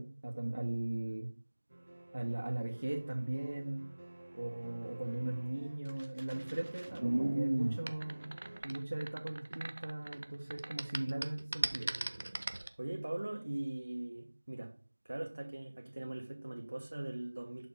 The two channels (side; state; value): both; inverted; correlation -1.00